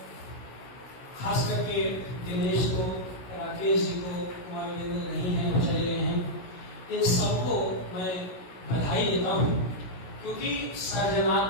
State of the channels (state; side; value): late; right; 16 ms